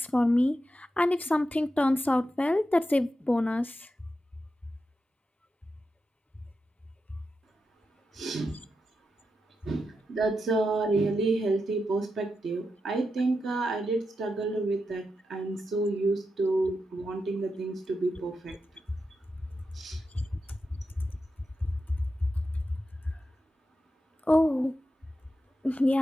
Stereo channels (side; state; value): both; normal; correlation 0.88